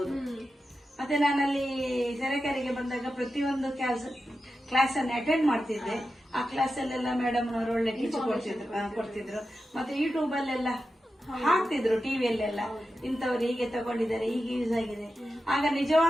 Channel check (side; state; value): both; normal; correlation 0.91